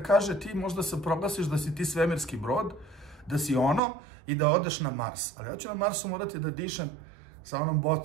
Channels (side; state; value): left; drops out; at 3.8 s